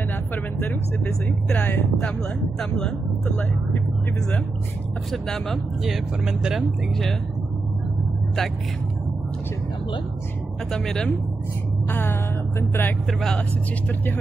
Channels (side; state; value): left; quieter; 3.5 dB